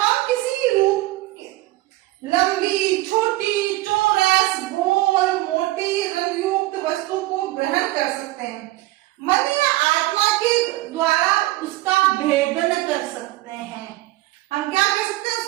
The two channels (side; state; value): left; quieter; 18.5 dB